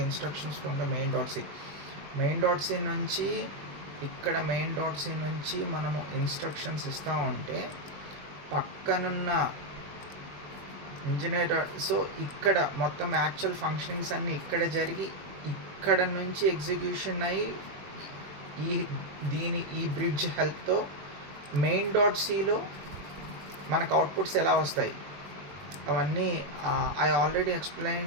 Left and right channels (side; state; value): left; late; 21 ms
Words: instructions from the main.c. main.c నుంచి ఇక్కడ main.c నుంచి మనము instructions ఇస్తూ ఉంటే పక్కనున్న engineer. So ఇక్కడ మొత్తం actual functionings అన్నీ ఇక్కడ జరిగి ఇక్కడ నుంచి ఎగ్జిక్యూషన్ అయ్యి ఈ బ్రిడ్జ్ హెల్ప్తో మెయిన్ డాట్ సిలో మనకు అవుట్పుట్స్ ఎలా వస్తాయి అవన్నీ I already